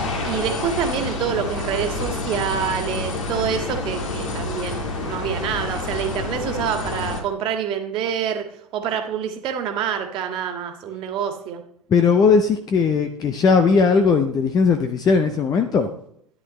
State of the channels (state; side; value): normal; both; correlation 0.40